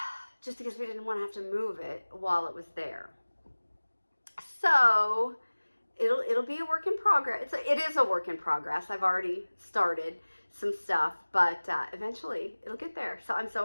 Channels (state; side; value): inverted; both; correlation -1.00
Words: just because we didn't want to have to move it while it was there. So it'll be a work in progress. It is a work in progress. I've already started some stuff, but eventually it'll get there. So I'm so